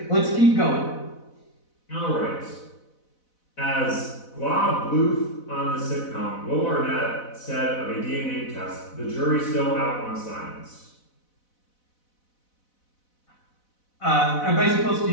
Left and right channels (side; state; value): right; late; 4.0 ms